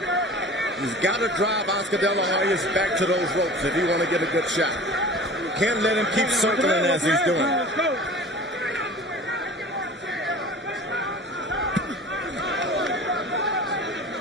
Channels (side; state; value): both; normal; correlation 0.41